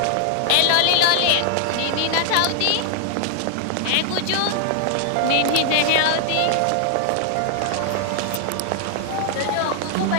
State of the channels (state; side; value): different; both; correlation 0.00